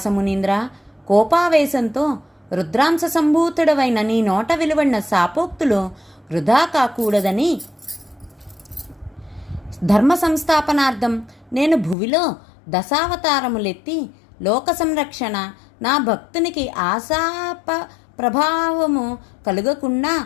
మునీంద్ర, కోపావేశంతో రుద్రాంశ సంభూతుడవైన నీ నోట వెలువడిన శాపోక్తులు వృధా కాకూడదని ధర్మ సంస్థాపనార్థం నేను భువిలో దశావతారములెత్తి లోక సంరక్షణ, నా భక్తునికి ఆశాప ప్రభావము కలుగకుండా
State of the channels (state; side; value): drops out; right; at 12.0 s